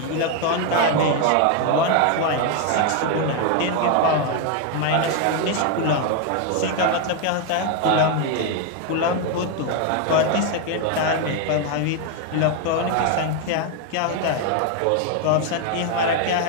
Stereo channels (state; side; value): different; both; correlation 0.01